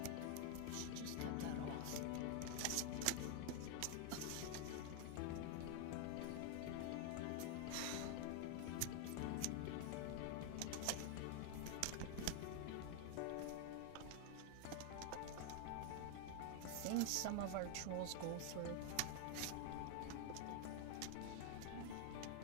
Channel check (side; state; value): both; different; correlation 0.01